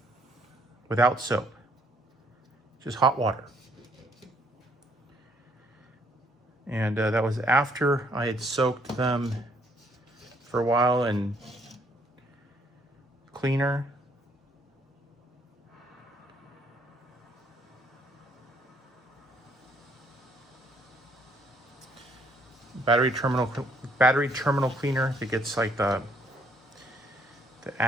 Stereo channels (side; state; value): both; normal; correlation 0.67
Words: without soap, just hot water. And that was after I had soaked them for a while in cleaner. Battery terminal cleaner that gets like the